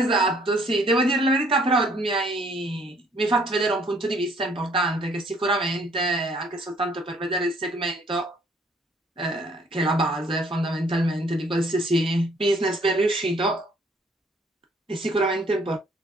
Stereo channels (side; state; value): both; normal; correlation 0.62